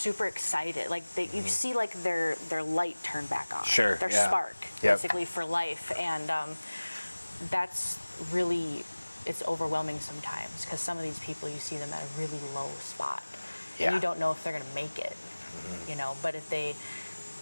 excited. Like you see their light turn back on. Their spark, basically, for life. And that's really, it's overwhelming sometimes, because some of these people, you see them at a really low spot. And you don't know if they're going to make it, but if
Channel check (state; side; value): inverted; both; correlation -1.00